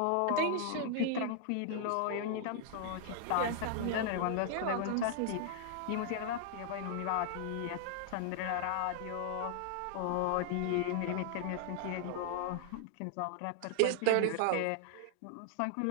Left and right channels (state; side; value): different; both; correlation -0.01